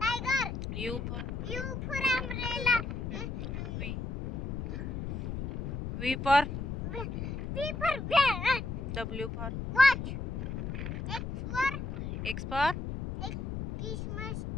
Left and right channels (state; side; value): noise; left; rumble, 5 dB below the sound